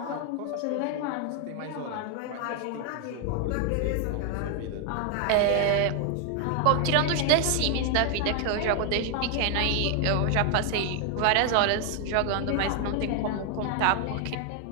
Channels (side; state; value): both; different; correlation 0.00